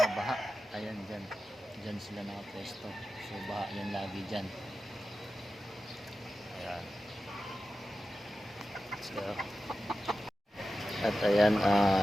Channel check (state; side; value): normal; both; correlation 0.93